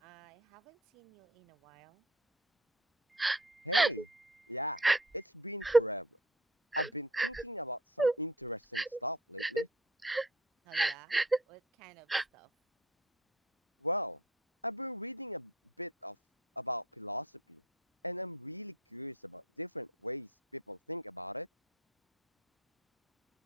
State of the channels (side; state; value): both; normal; correlation 0.50